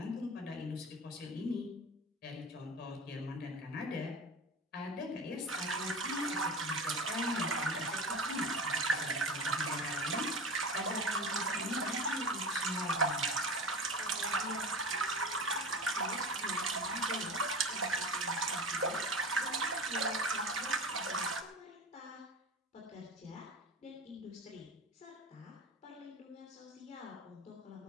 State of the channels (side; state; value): both; normal; correlation 0.30